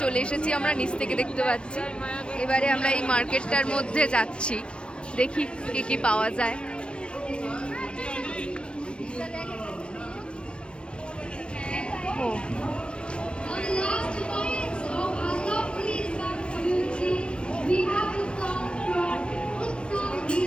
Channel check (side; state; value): right; late; 0.057 ms